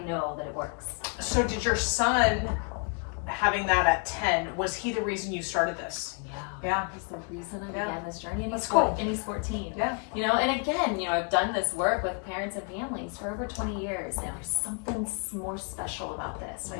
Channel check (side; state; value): right; quieter; 39.2 dB